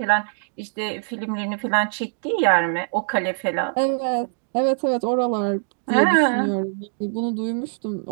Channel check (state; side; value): silent; left; digital silence